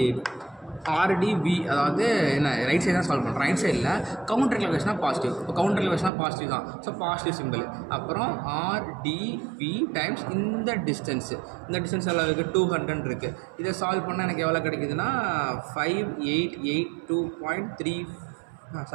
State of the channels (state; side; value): drops out; left; at 6.1 s